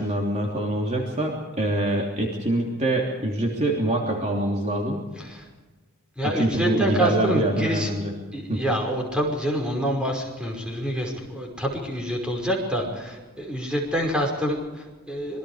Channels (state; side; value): normal; both; correlation 0.50